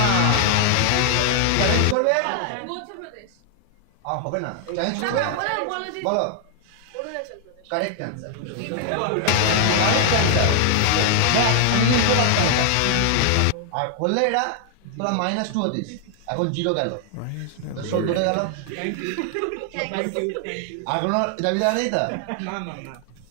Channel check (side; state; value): both; different; correlation 0.00